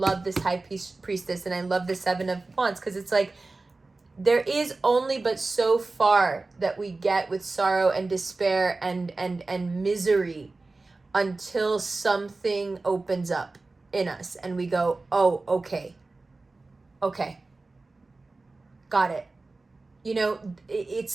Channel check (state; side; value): quieter; left; 3.4 dB